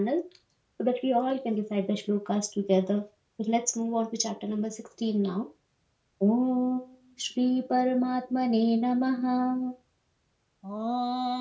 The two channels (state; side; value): identical; both; correlation 1.00